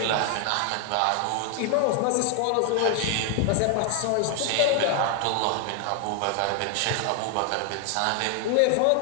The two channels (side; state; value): both; different; correlation 0.00